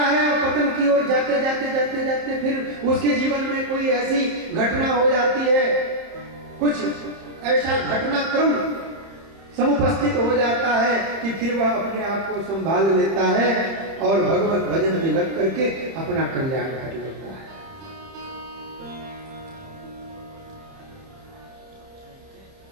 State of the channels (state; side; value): late; left; 30 ms